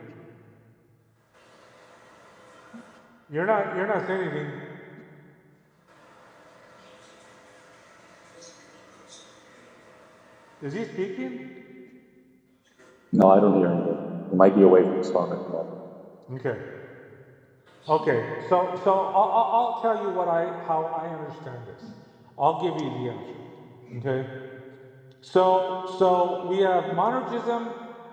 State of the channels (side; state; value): both; identical; correlation 1.00